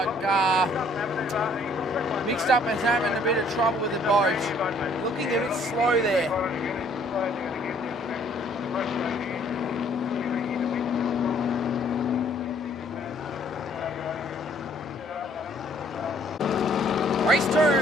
mixed up and having a bit of trouble with the boat. Looking a bit slow there. Race 2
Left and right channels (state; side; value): normal; both; correlation 0.62